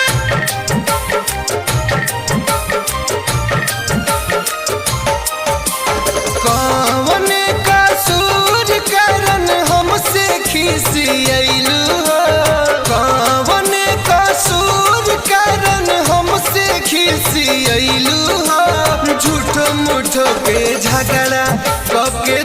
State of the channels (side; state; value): both; identical; correlation 1.00